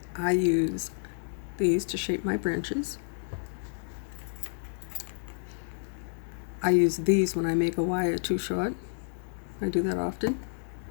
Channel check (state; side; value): silent; right; digital silence